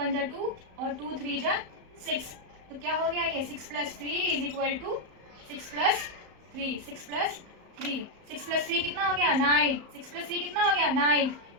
जा 2 और 2 3 जा 6। तो क्या हो गया ये 6 plus 3 is equal to 6 plus 3 6 plus 3 6 plus 3 कितना हो गया 9। 6 प्लस 3 कितना हो गया 9।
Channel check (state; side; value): late; left; 34 ms